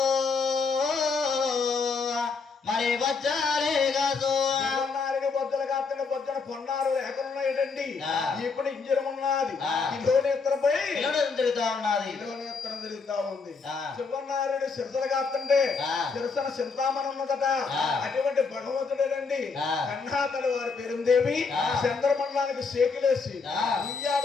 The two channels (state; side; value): quieter; right; 4.7 dB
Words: మరి వచ్చారే కాదు బొద్దలు కాకుండా బొద్దన పొన్నారు లేకున్నాయండి ఆ. ఇప్పుడు ఇంజనం ఉన్నది ఆ. కిలోనేత్రంపై తిరుగుతా ఉన్నది కిలోనేత్రం తిరుగుతా ఉంది ఆ. శివనారాయణ సిరసలు కాస్తుంటే ఆ. సిరసన చింతామణి ఉన్నదట ఆ. అటువంటి భగవంతుడేనండి ఆ. కన్నాతలు వారి పేరుందేవి ఆ. చంద్రమండలానికి సేకులేసి ఆ.